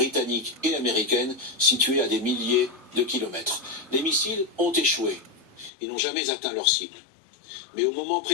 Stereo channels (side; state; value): right; drops out; at 5.7 s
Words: et américaine située à des milliers de kilomètres. Les missiles ont échoué. Ils n'ont jamais atteint leur cible. Mais au moment